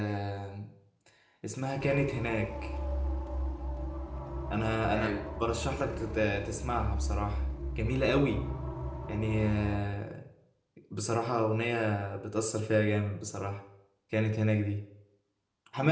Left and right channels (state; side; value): identical; both; correlation 1.00